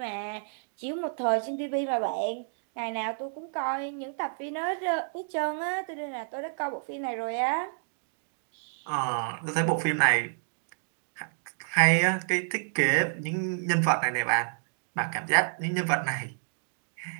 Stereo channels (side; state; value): left; silent; digital silence